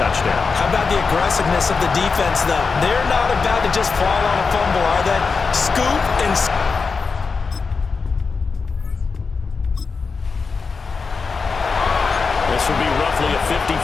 How about the aggressiveness of the defense, though? They're not about to just fall on a fumble, are they? Scoop and... This will be roughly a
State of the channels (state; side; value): quieter; right; 4.8 dB